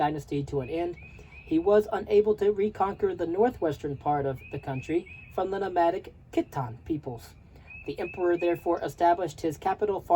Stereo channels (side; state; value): both; identical; correlation 1.00